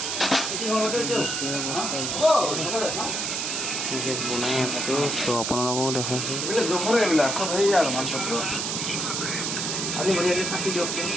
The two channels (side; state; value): right; noise; hiss, 1 dB below the sound